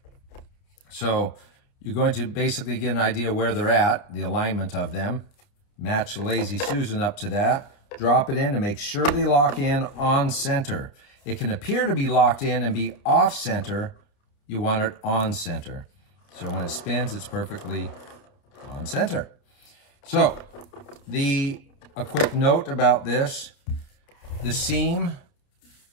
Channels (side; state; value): right; late; 30 ms